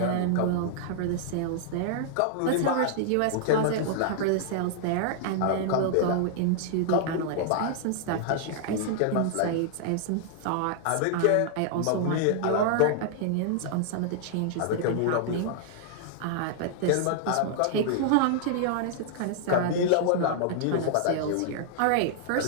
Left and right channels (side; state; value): both; different; correlation -0.01